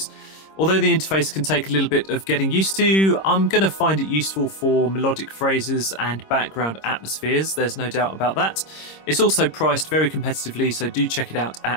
Although the interface can take a little bit of getting used to, I'm going to find it useful for melodic phrases and background atmospheres, there's no doubt about that. It's also priced very competitively, so do check it out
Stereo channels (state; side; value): late; right; 26 ms